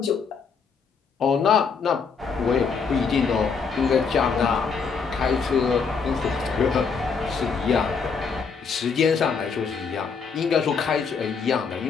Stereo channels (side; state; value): right; quieter; 5.6 dB